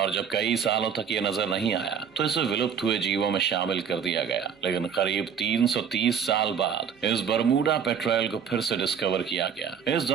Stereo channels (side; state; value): left; quieter; 7.4 dB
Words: जब कई सालों तक ये नजर नहीं आया तो इसे विलुप्त हुए जीवों में शामिल कर दिया गया। लेकिन करीब 330 साल बाद इस बरमूडा पेट्रोल को फिर से डिस्कवर किया गया। इस